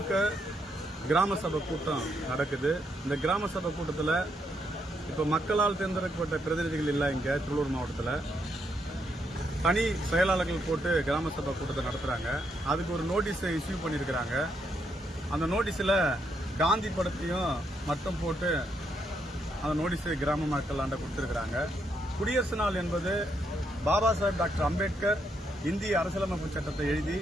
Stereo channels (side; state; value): both; normal; correlation 0.77